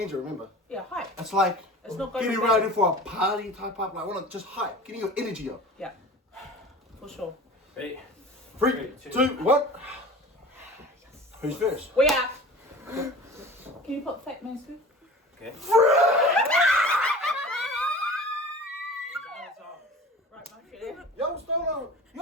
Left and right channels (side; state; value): both; normal; correlation 0.39